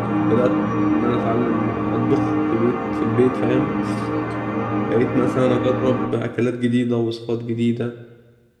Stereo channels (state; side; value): identical; both; correlation 1.00